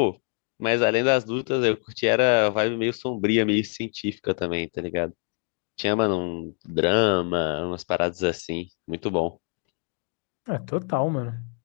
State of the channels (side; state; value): right; quieter; 37.5 dB